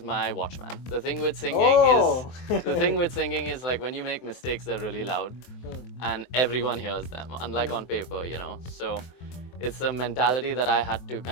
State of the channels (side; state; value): right; late; 23 ms